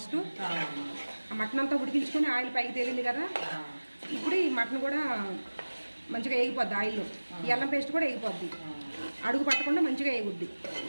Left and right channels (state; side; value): inverted; both; correlation -1.00